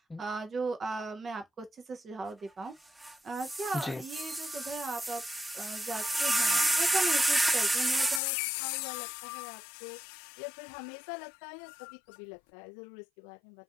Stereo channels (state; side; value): drops out; right; at 8.2 s